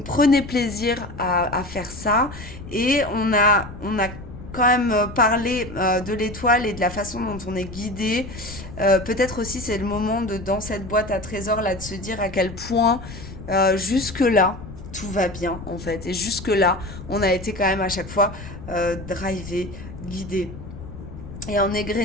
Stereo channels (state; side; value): noise; left; rumble, 13 dB below the sound